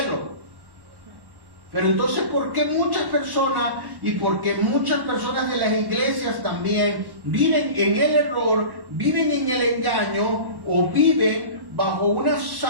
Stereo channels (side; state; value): left; late; 1.1 ms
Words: Pero entonces, ¿por qué muchas personas, y porque muchas personas de las iglesias también viven en el error, viven en el engaño, o viven bajo una